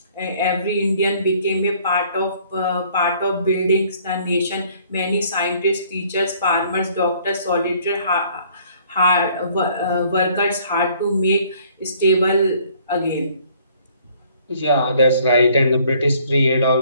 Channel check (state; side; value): inverted; both; correlation -0.60